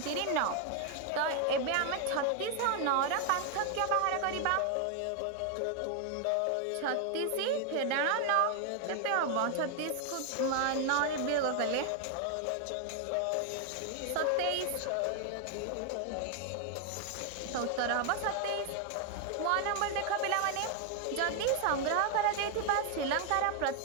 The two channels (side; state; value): both; different; correlation 0.00